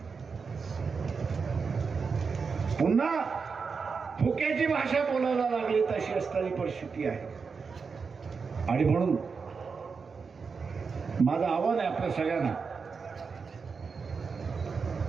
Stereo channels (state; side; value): quieter; left; 5.3 dB